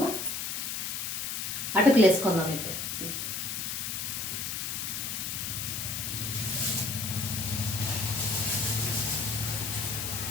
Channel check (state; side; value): noise; left; hiss, 3 dB below the sound